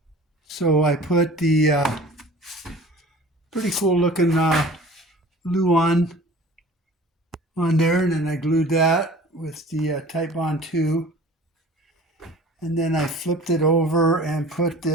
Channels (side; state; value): both; normal; correlation 0.44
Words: So I put the pretty cool looking Luan on there, and then I glued that with the Type Bond 2, and then I flipped it over and put